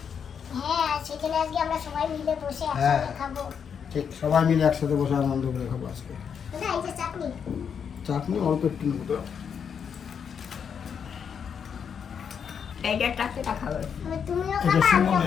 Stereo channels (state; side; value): quieter; right; 7.2 dB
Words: হ্যাঁ সেখানে আজকে আমরা সবাই মিলে বসে হ্যাঁ। একসাথে খাবো। ঠিক সবাই মিলে একসাথে বসে আনন্দ করে খাবো আজকে। দাদা এই যে চাটনি, চাটনি অল্প একটু নেবো তো। এইটা চারটেটা খাবে। তুমিও এটা খাবা আমিও